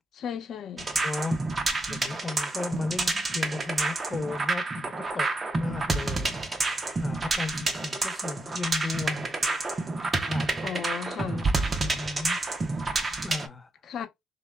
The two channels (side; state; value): both; normal; correlation 0.84